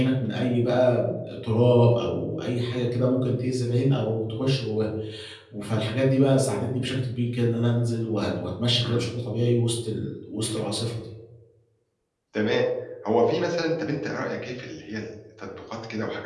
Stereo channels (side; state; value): both; identical; correlation 1.00